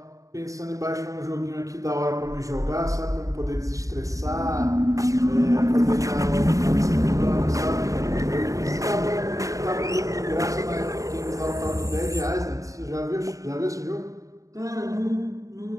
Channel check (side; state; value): left; late; 0.16 ms